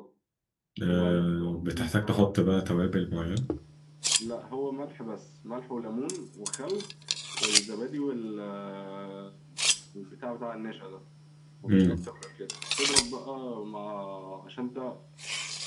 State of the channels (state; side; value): identical; both; correlation 1.00